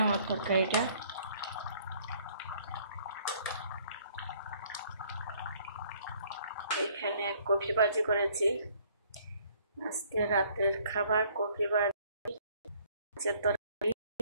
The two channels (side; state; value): both; inverted; correlation -0.60